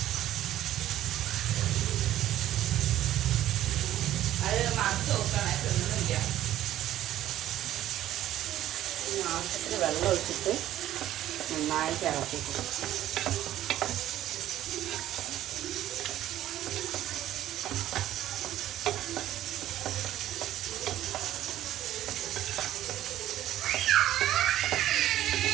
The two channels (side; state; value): left; quieter; 13.1 dB